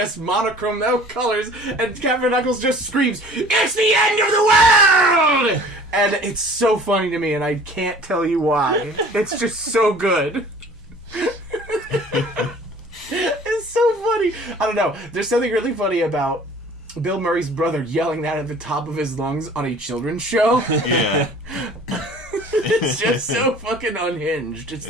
monochrome, no colors. And Captain Knuckles just screams, "It's the end of the world!" And it's so funny to me, and I can't tell you why. It's just so good. It's so funny. I don't know. There's something really funny about Bill Murray's brother yelling that at the top of his lungs on a children's show. Yeah. It's just so fucking unhinged. It's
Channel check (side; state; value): both; normal; correlation 0.48